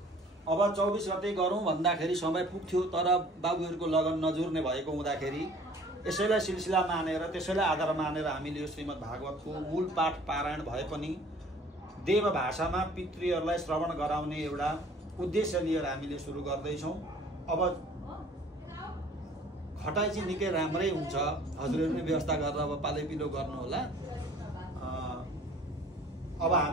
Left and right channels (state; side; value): normal; both; correlation 0.52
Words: अब 24 गते गरौँ भन्दाखेरि समय पुग्थ्यो, तर बाबुहरूको लगन नजुर्ने भएको हुँदाखेरि यसैलाई सिलसिला मानेर त्यसैलाई आधार मानेर हामीले यो श्रीमद् भागवतको मूल पाठ पारायण भए पनि देव भाषामा पितृहरूलाई श्रवण गराउने एउटा उद्देश्य लिएर हामीले सुरु गर्दैछौँ। अब खटाइ चाहिँ निकै राम्रै हुन्छ, हजुरहरूले व्यवस्था गरेर अब पालैपिलो गर्नुहोला। अब